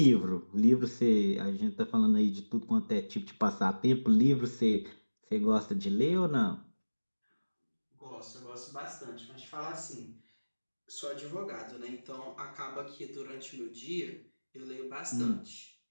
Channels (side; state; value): both; inverted; correlation -1.00